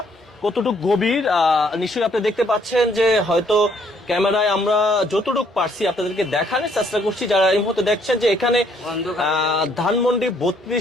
কতটুকু গভীর। নিশ্চয়ই আপনি দেখতে পাচ্ছেন যে হয়তো ক্যামেরায় আমরা যতটুকু পারছি আপনাদেরকে দেখানোর চেষ্টা করছি। যারা এই মুহূর্তে দেখছেন যে এখানে ধানমন্ডি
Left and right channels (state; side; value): normal; both; correlation 0.66